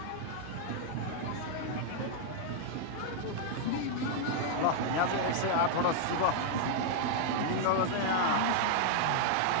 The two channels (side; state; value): both; different; correlation 0.00